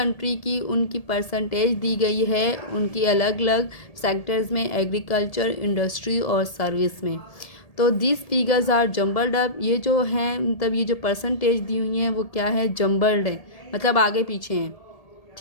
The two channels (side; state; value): right; late; 1.8 ms